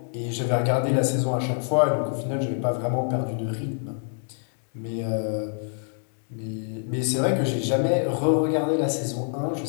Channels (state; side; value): silent; right; digital silence